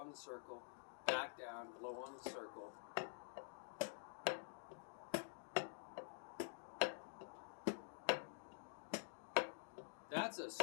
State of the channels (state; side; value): silent; right; digital silence